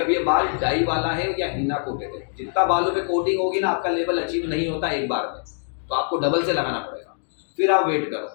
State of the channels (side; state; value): right; silent; digital silence